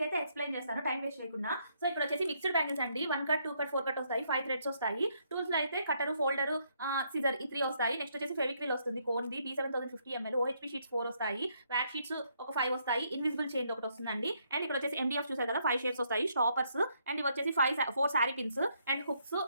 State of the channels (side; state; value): both; inverted; correlation -0.73